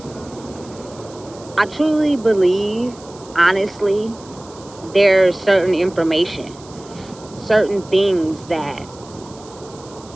I truly believe, honestly, there's certain information, certain things that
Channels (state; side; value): noise; right; hiss, 22 dB below the sound